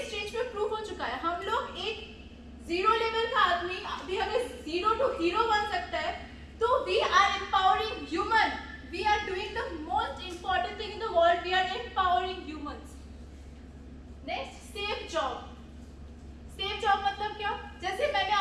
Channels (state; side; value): identical; both; correlation 1.00